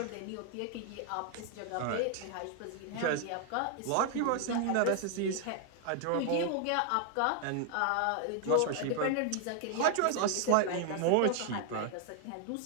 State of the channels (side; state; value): both; different; correlation 0.00